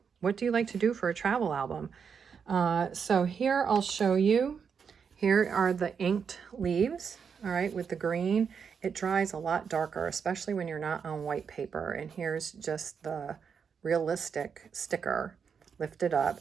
What do you like to do for a travel album? So here I'll show you. Here are the inked leaves, all right, with the green. It dries a lot darker, especially when you're not on white paper. And here's just the realistic sticker lifted up.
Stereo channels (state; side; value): quieter; left; 6.5 dB